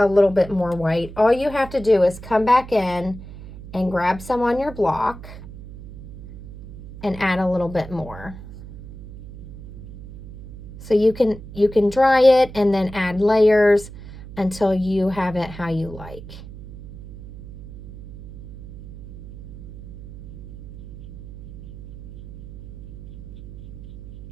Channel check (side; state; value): right; noise; hum, 15 dB below the sound